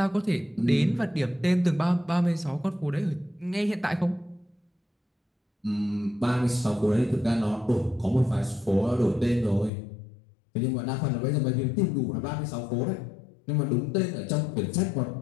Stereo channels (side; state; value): right; drops out; at 9.7 s